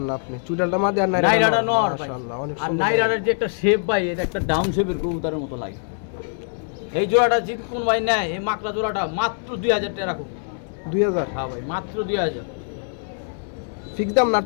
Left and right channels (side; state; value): right; silent; 58 dB below the other